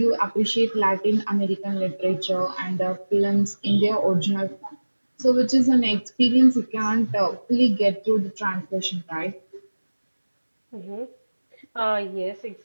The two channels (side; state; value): both; inverted; correlation -1.00